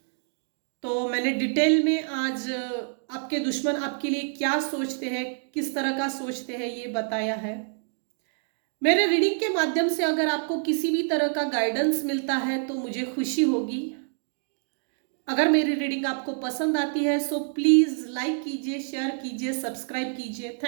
तो मैंने डिटेल में आज आपके दुश्मन आपके लिए क्या सोचते हैं, किस तरह का सोचते हैं ये बताया है। मेरे रीडिंग के माध्यम से अगर आपको किसी भी तरह का गाइडेंस मिलता है तो मुझे खुशी होगी। अगर मेरी रीडिंग आपको पसंद आती है सो प्लीज लाइक कीजिए, शेयर कीजिए, सब्सक्राइब कीजिए।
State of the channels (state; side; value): silent; left; 60 dB below the other